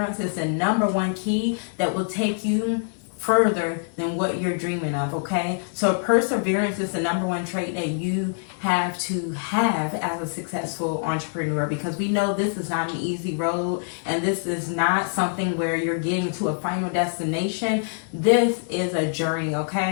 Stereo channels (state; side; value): silent; right; digital silence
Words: is the number one key that will take you further than what you're dreaming of, okay? So perseverance is the number one trait that you have to have as a successful entrepreneur, because we know this is not an easy road and this is not something where you're getting to a final destination. This is a journey,